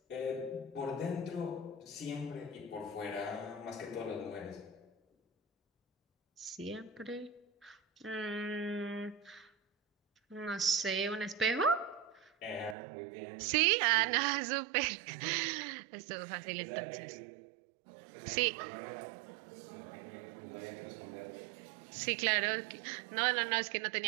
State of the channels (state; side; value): drops out; left; at 12.8 s